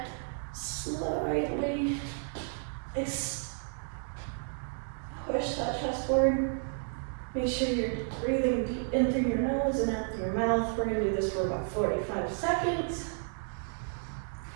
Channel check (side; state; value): left; silent; 56 dB below the other